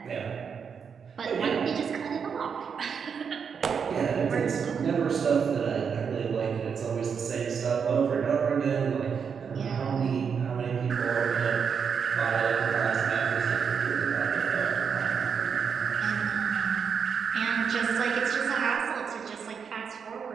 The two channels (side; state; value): left; quieter; 6.6 dB